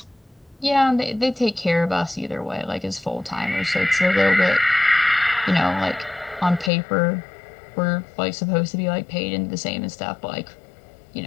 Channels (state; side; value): drops out; right; at 6.7 s